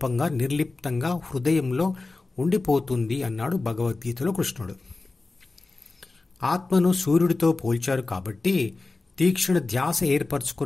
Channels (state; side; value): quieter; right; 3.5 dB